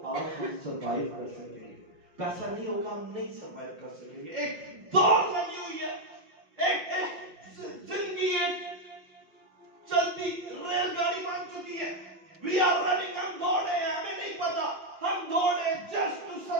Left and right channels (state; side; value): late; left; 5.6 ms